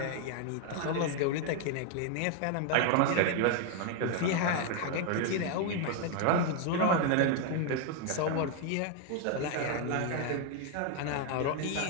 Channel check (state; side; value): different; both; correlation 0.00